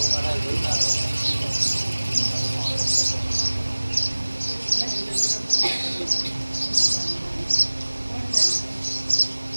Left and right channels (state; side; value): inverted; both; correlation -1.00